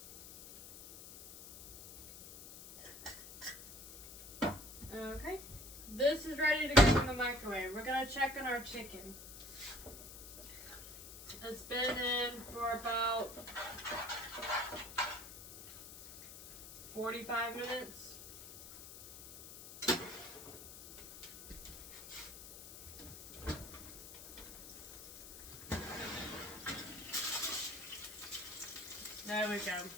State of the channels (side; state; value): left; noise; hiss, 14 dB below the sound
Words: Okay, this is ready to go in the microwave. We're gonna check on our chicken. It's been in for about 45 minutes. There we go.